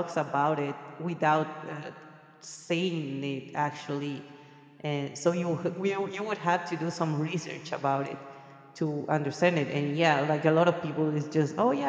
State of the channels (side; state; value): both; identical; correlation 1.00